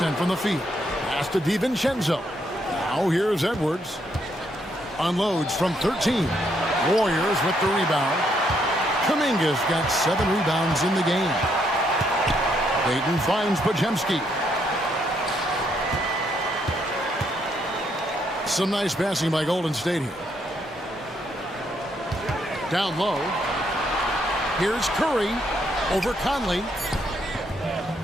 from the field. Pass to DiVincenzo. Now here's Edwards. Unloads from 13. Warriors with the rebound. Kuminga's got 7 rebounds in the game. Payton finds Podziemski. Some nice passing by Golden State here. Down low. Here's Curry over Conley.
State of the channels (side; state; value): both; normal; correlation 0.74